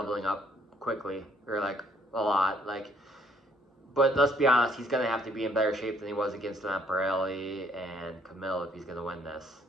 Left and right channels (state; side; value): normal; both; correlation 0.65